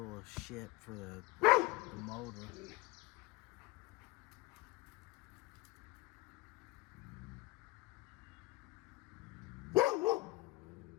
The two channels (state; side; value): quieter; right; 20.7 dB